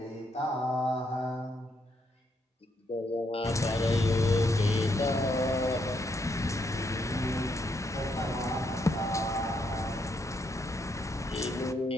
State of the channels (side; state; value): both; normal; correlation 0.76